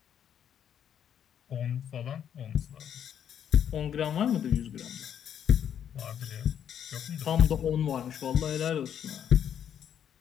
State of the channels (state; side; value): quieter; right; 9.1 dB